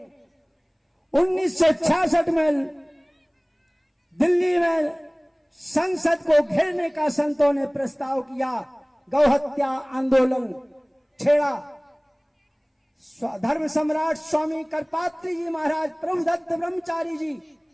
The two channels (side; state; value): both; identical; correlation 1.00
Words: 1966 में दिल्ली में संसद को घेरने का संतों ने प्रस्ताव किया, गौ हत्या आंदोलन छेड़ा। धर्म सम्राट स्वामी करपात्री जी महाराज, प्रभुदत्त ब्रह्मचारी जी,